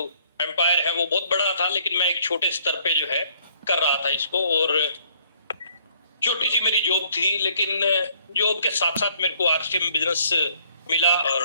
एम्पायर है वो बहुत बड़ा था, लेकिन मैं एक छोटे स्तर पे जो है कर रहा था इसको। और छोटी सी मेरी जॉब थी, लेकिन जॉब के साथ साथ मेरे को आरसीएम बिजनेस मिला।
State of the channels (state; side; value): inverted; both; correlation -0.62